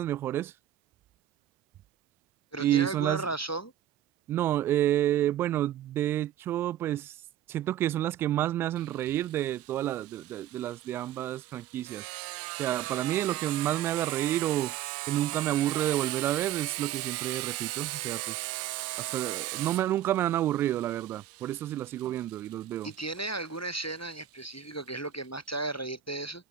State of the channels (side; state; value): left; quieter; 11.4 dB